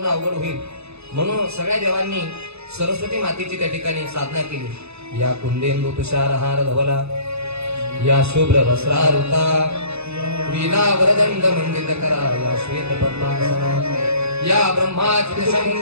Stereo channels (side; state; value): left; late; 0.80 ms